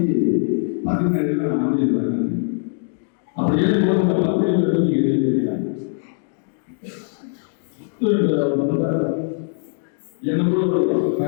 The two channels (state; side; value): silent; right; 65 dB below the other